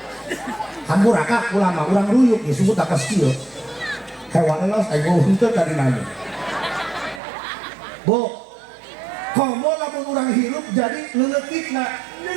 Hampuraka ulama urang ruyuk disebut atas kieu. Hewan elos aing mau henteu dari nanya. Bu, komo lamun urang hirup jadi leuletikna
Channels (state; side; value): drops out; left; at 7.2 s